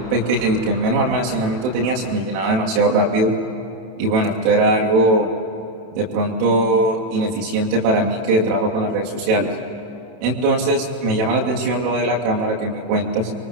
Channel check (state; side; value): late; left; 32 ms